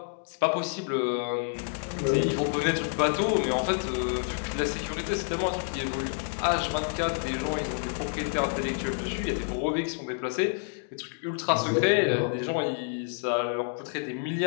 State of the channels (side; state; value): right; silent; 58 dB below the other